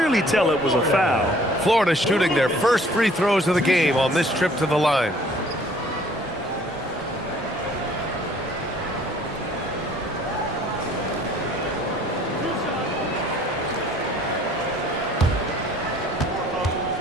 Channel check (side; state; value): both; normal; correlation 0.56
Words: tell it was a foul. Florida shooting their first free throws of the game on this trip to the line.